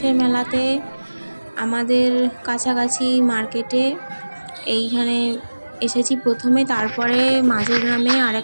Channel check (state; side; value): inverted; both; correlation -1.00